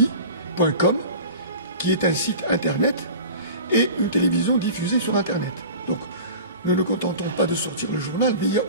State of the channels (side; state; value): both; inverted; correlation -0.38